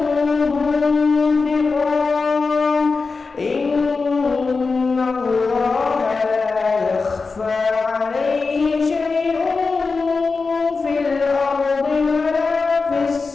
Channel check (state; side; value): quieter; right; 4.3 dB